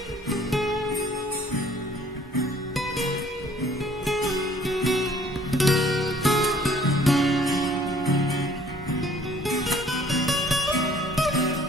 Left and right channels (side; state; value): both; normal; correlation 0.57